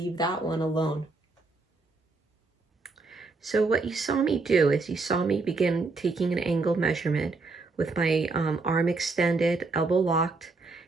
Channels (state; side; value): quieter; left; 3.8 dB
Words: that one alone. So what you saw me do is you saw me begin taking an angle measurement with my arm extended, elbow locked,